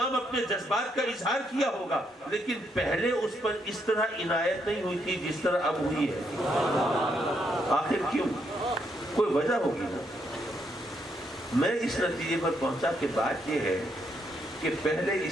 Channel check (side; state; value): both; normal; correlation 0.76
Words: اپنے جذبات کا اظہار کیا ہوگا، لیکن پہلے اس پر اس طرح عنایت نہیں ہوئی تھی جس طرح اب ہوئی ہے۔ آخر کیوں؟ کوئی وجہ ہوگی نا۔ میں اس نتیجے پر پہنچا کہ بات یہ ہے کہ پہلے